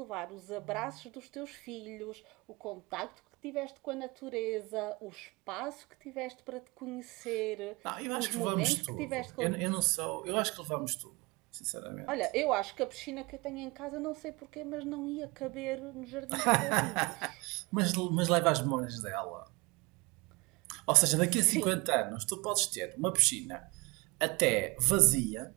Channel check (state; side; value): quieter; left; 25.1 dB